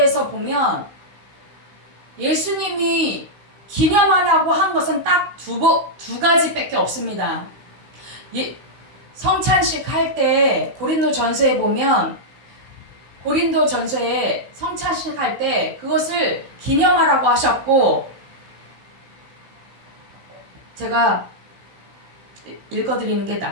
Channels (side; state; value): left; late; 16 ms